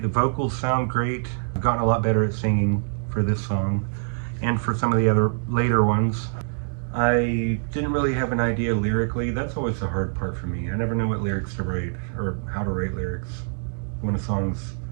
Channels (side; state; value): left; silent; digital silence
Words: The vocals sound great. I've gotten a lot better at singing for this song and for some of the other later ones. I didn't really have an idea lyrically. That's always the hard part for me. I never know what lyrics to write or how to write lyrics when a song's